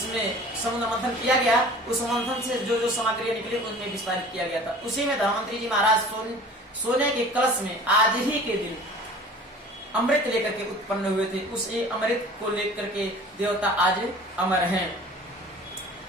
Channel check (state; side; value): normal; both; correlation 0.44